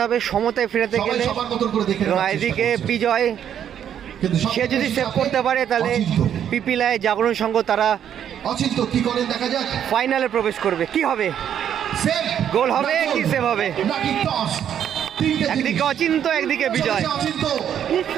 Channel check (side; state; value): left; quieter; 9.4 dB